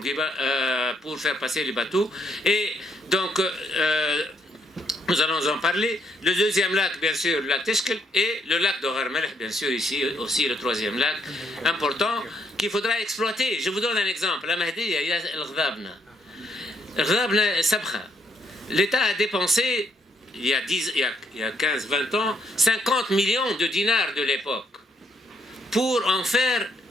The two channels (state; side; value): normal; both; correlation 0.72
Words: pour faire passer les bateaux. Et donc, nous allons en parler. Le 2e lac, bien sûr, le lac Teshkel, et le lac de Gharmelech, bien sûr, ici aussi le 3e lac, important, qu'il faudra exploiter. Je vous donne un exemple. La Mahdiya, il y a el-Ghadabna. L'État a dépensé, il y a 15-20 ans, 50 millions de dinars de l'époque pour en faire